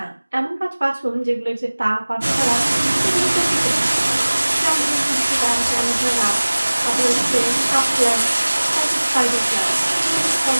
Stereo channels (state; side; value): inverted; both; correlation -1.00